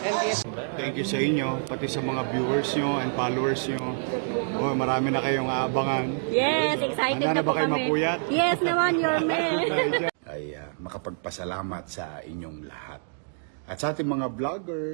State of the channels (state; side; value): silent; left; digital silence